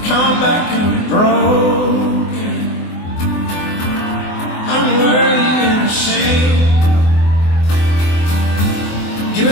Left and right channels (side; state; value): right; late; 24 ms